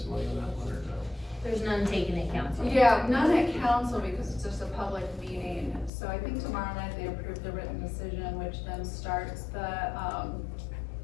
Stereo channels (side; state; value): right; drops out; at 5.9 s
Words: on that one or no? There's none taken at council. Yeah, none at council because it's just a public meeting. So I think tomorrow night they approve the written decision, which then starts the,